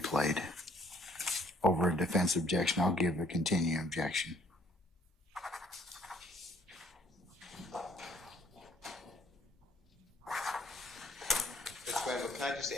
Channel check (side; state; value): both; normal; correlation 0.61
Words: over a defense objection. I'll give a continuing objection. Can I just